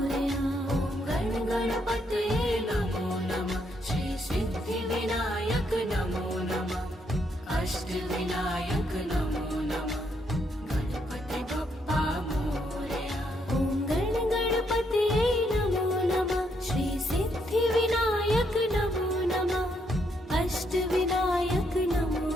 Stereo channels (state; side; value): normal; both; correlation 0.75